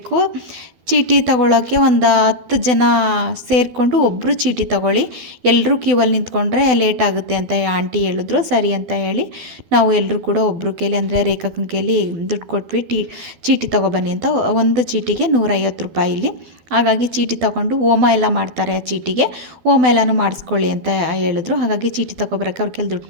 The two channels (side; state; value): left; late; 12 ms